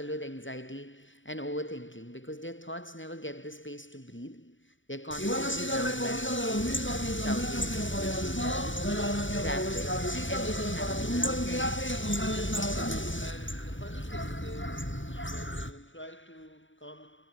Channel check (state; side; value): late; right; 0.56 ms